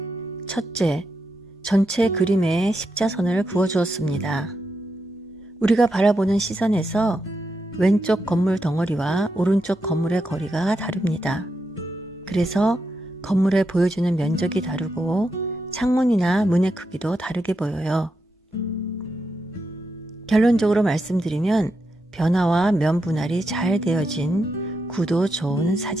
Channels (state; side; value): normal; both; correlation 0.85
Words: 첫째, 전체 그림에 십자선을 그어주었습니다. 우리가 바라보는 시선에서 왼쪽 건물 덩어리와 오른쪽 건물의 거리가 다릅니다. 그래서 건물에 보여주는 면적이 다르고 창문이나 문의 크기도 다르게 보여요. 결론적으로 말씀드리면 변화와 면 분할이 잘 되어진 구도 좋은